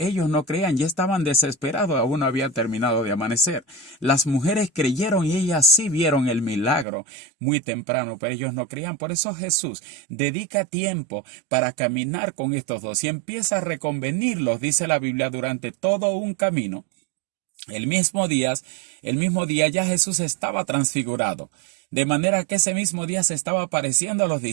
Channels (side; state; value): left; drops out; at 6.9 s